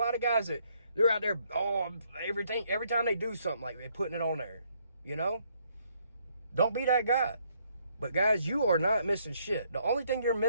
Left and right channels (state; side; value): inverted; both; correlation -0.70